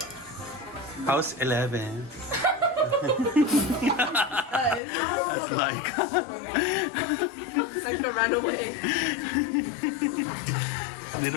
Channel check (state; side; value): drops out; right; at 4.8 s